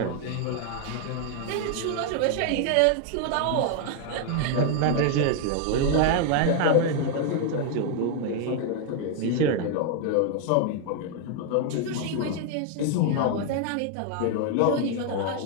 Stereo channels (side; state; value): both; different; correlation 0.00